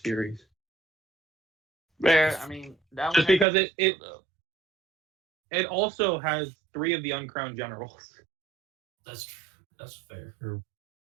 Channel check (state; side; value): drops out; left; at 3.5 s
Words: Rare. I mean, that Just one because has- it also has 3 of the uncrowned generals. That's true. That's fair. For